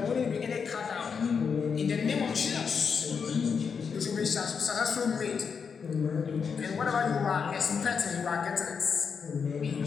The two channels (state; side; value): quieter; right; 6.1 dB